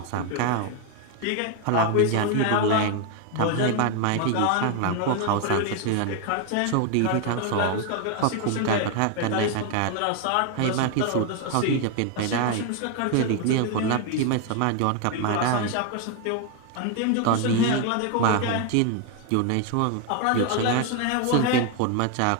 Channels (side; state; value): both; different; correlation 0.01